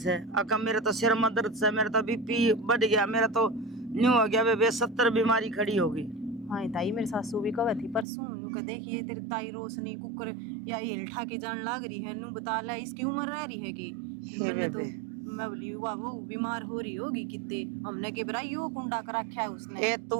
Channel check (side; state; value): left; drops out; at 8.1 s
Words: है। अका मेरे तो सिर में दर्द से, मेरा तो बीपी बढ़ गया, मेरा तो न्यू हो गया बेबे, 70 बीमारी खड़ी होगी। हाँ ताई मेरी सासू भी कहे थी परसों नू के देखिए तेरी ताई रोशनी कुकर या हिल ठा के जान लाग रही है, नू बता ले इसकी उम्र रह रही है कि मैंने तो मैं बोली वाह वो बीमार हो रही होगी कितने, हमने के बराई यो कुंडा कर रखा है उसने। ए